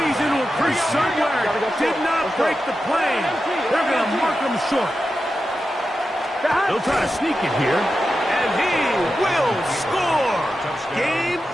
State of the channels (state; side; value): normal; both; correlation 0.91